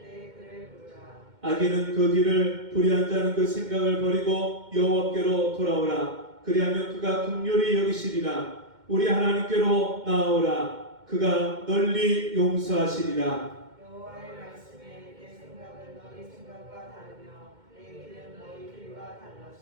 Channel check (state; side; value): late; left; 2.1 ms